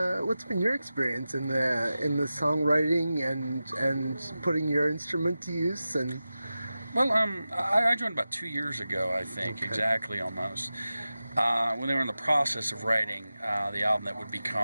experience in the songwriting and putting your instrument to use? And Well, I joined about 2 years ago, I think, Okay. exactly almost. When they were in the process of writing the album that would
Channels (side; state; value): both; inverted; correlation -0.94